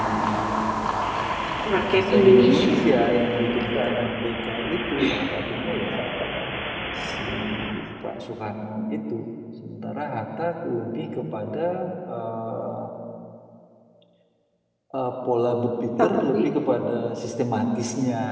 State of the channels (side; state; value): both; identical; correlation 1.00